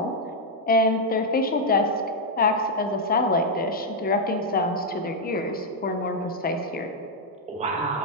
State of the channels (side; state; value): both; normal; correlation -0.03